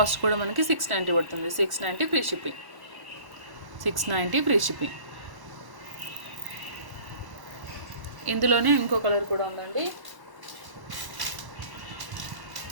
కూడా మనకి 690 పడుతుంది. 690 ఫ్రీ షిప్పింగ్. 690 free shipping. ఇందులోనే ఇంకో కలర్ కూడా ఉందండి.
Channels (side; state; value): left; late; 1.1 ms